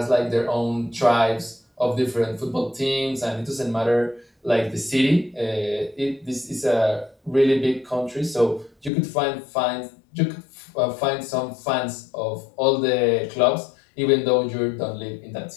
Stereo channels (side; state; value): right; drops out; at 8.9 s